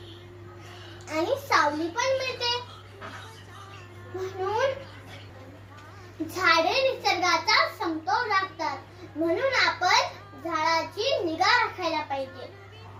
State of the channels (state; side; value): identical; both; correlation 1.00